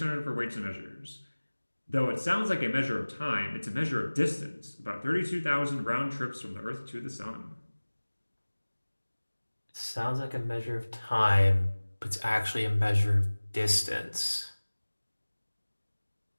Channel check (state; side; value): inverted; both; correlation -1.00